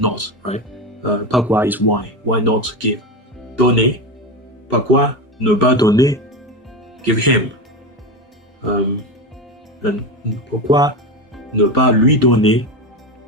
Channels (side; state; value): both; normal; correlation 0.19